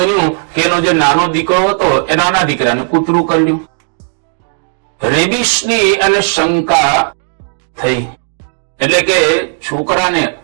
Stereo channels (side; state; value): left; silent; 61 dB below the other